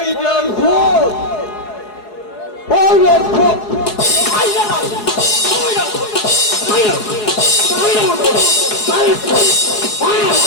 রেল ফোন, ওই রেল ফোন মাইরা না, মাইরা মাইরা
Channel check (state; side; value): late; right; 4.8 ms